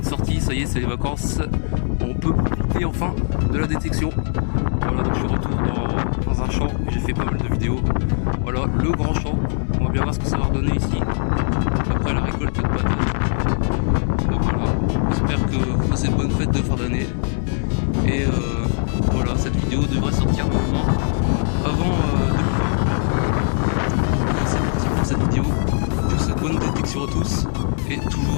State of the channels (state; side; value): silent; right; digital silence